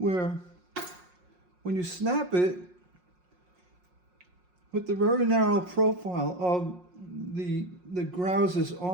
when you snap it with the very narrow profile of the grousers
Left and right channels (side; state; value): left; late; 5.5 ms